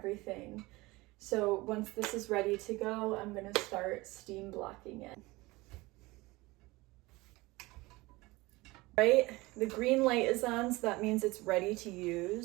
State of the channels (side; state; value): left; quieter; 21.7 dB